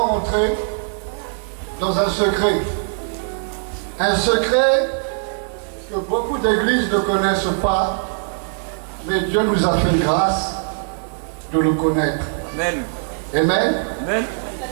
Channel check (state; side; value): silent; left; digital silence